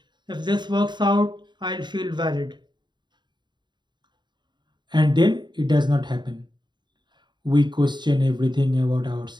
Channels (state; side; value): late; left; 0.22 ms